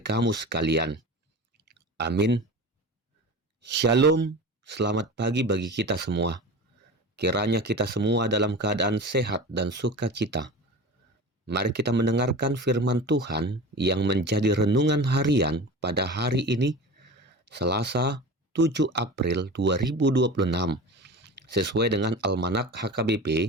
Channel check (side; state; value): both; normal; correlation 0.33